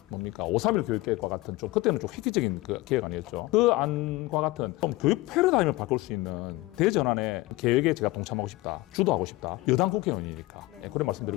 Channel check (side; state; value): right; quieter; 19.8 dB